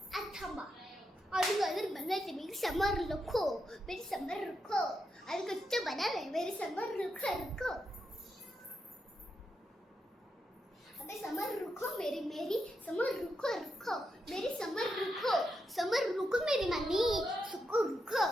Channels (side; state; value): both; normal; correlation 0.84